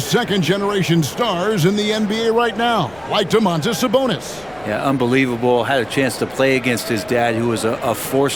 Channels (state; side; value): noise; left; rumble, 24 dB below the sound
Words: stars in the NBA right now, like Domantas Sabonis. Yeah, unbelievable. Had a chance to play against his dad, who was a force